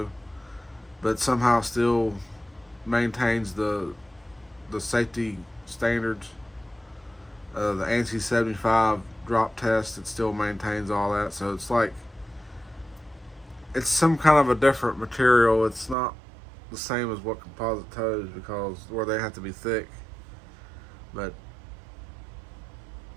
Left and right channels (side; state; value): left; drops out; at 16.0 s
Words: but somehow still maintains the safety standards. The ANSI 75 drop test, it still maintains all that. So it's like, it's some kind of a different material. It's not the same as what composite toes, because where they have to be thick. But